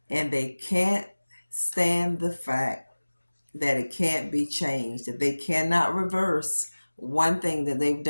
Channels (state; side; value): inverted; both; correlation -1.00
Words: and they can't stand the fact that it can't be changed, that they cannot reverse one thing that they've